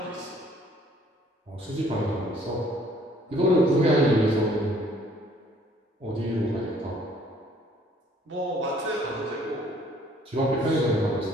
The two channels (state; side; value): normal; both; correlation 0.60